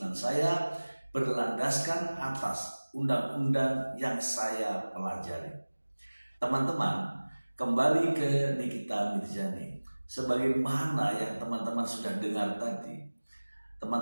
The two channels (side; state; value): both; inverted; correlation -1.00